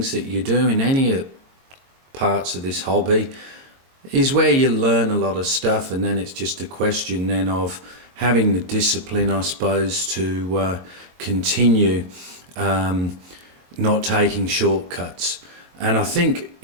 that you do in any parts of this hobby is where you learn a lot of stuff, and then it's just a question then of having the discipline, I suppose, to continue not taking shortcuts. And I think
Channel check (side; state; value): left; late; 22 ms